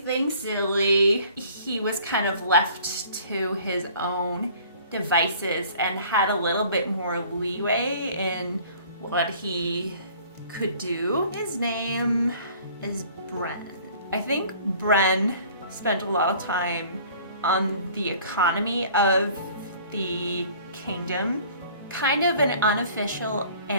silly. He was kind of left to his own devices and had a little bit more leeway in what he could do. His name is Bren. I think Bren spent a lot of time on the economy of the kingdom, kind of an unofficial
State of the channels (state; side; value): inverted; both; correlation -0.51